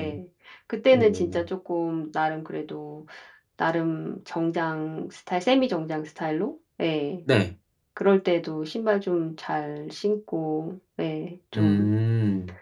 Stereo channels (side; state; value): both; identical; correlation 1.00